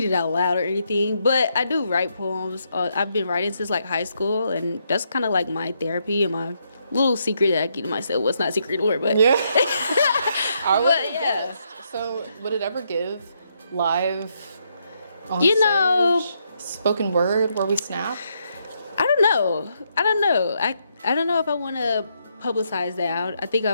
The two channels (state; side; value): inverted; both; correlation -0.77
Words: it out loud or anything, but I do write poems. I've been writing since like high school, and that's kind of like my therapy and my little secret that I keep to myself. Well, it's not a secret anymore, but yeah. But yeah. So would it ever give live on You stage, know, spoken word where we snap? I don't know. I don't know if I want to publicize that. I think I